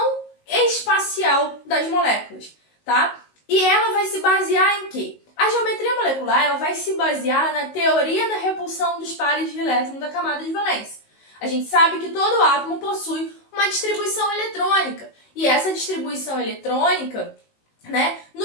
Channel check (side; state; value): right; late; 19 ms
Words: espacial das moléculas, tá? E ela vai se basear em quê? A geometria molecular ela vai se basear na teoria da repulsão dos pares de elétrons da camada de valência. A gente sabe que todo átomo possui uma distribuição eletrônica. E essa distribuição eletrônica, né,